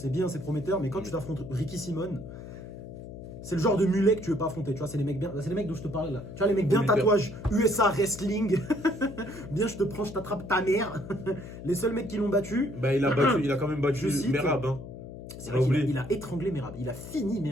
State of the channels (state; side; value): noise; left; hum, 12 dB below the sound